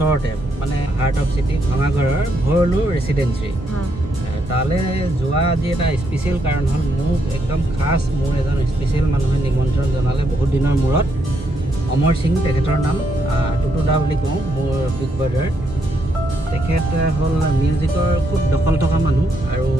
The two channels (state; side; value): normal; both; correlation 0.77